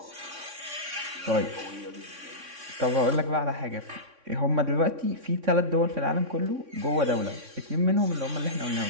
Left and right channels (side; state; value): left; late; 3.6 ms